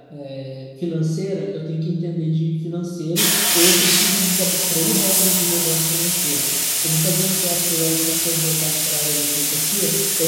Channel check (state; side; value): identical; both; correlation 1.00